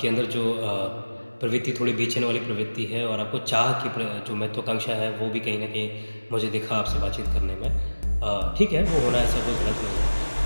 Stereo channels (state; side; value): inverted; both; correlation -1.00